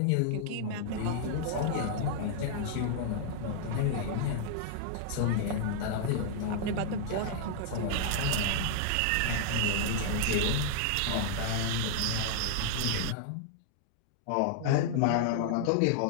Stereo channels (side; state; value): both; different; correlation -0.01